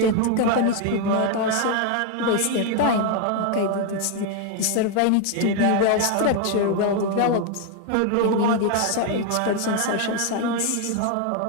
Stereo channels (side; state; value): both; different; correlation 0.01